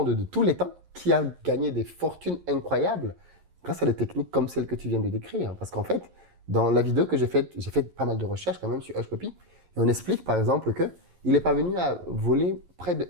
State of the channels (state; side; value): late; left; 11 ms